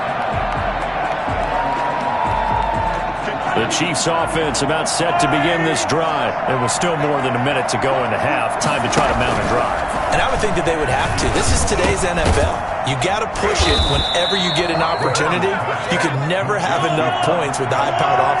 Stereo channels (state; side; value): identical; both; correlation 1.00